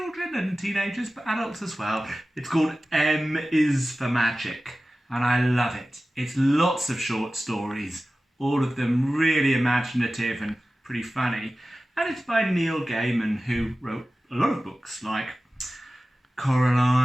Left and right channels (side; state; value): both; normal; correlation 0.96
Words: and teenagers, but adults as well. It's called M is for Magic and I love it. It's lots of short stories. All of them really imaginative and pretty funny. And it's by Neil Gaiman, who wrote a lot of books like